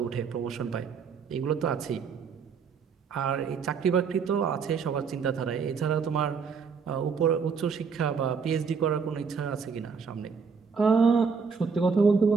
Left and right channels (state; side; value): quieter; left; 5.7 dB